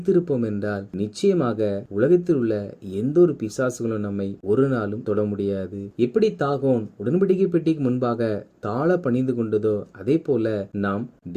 என்றால் நிச்சயமாக உலகத்தில் உள்ள எந்த ஒரு பிசாசுகளும் நம்மை ஒரு நாளும் தொட முடியாது. எப்படி தாகோன் உடன்படிக்கை பெட்டிக்கு முன்பாக தாழ பணிந்து கொண்டதோ அதே போல நாம்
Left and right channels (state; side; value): identical; both; correlation 1.00